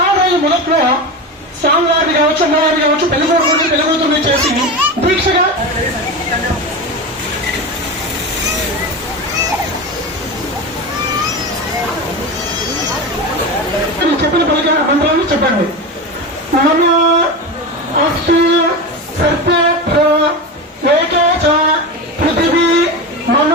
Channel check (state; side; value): normal; both; correlation 0.22